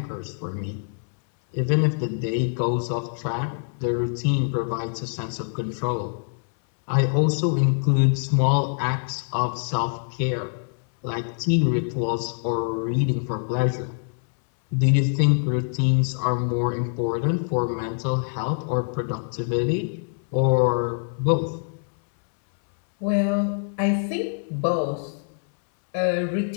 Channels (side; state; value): right; silent; 62 dB below the other